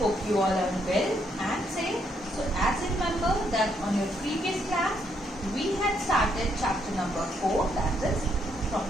you all are well and safe. So as you remember that on your previous class, we had started chapter number 4, that is from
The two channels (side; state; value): both; normal; correlation 0.74